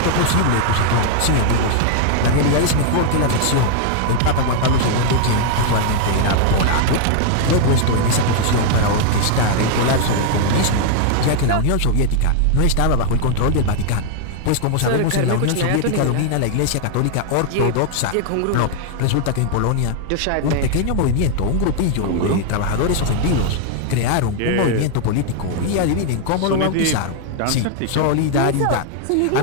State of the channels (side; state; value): both; different; correlation 0.00